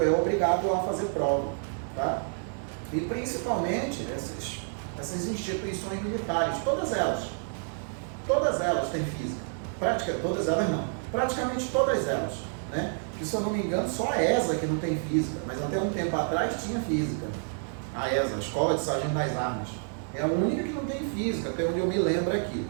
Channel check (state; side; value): silent; left; 59 dB below the other